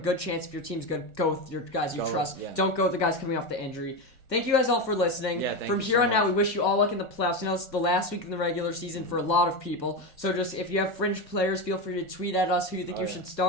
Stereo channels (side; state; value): right; late; 1.4 ms